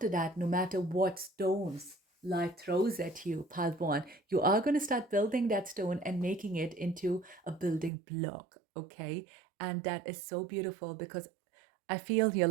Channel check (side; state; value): left; drops out; at 7.9 s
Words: that, no matter what stones life throws at you, pal one, you are going to start building that stone and making it into a building block. Okay. And that is so beautiful, because I feel here